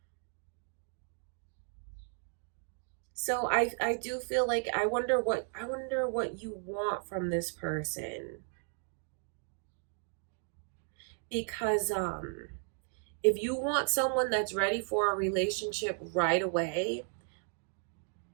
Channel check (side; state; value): left; silent; 54 dB below the other